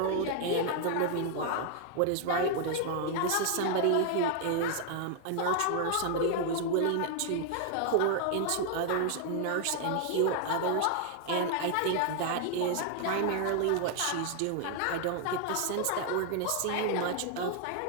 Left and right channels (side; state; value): both; different; correlation 0.00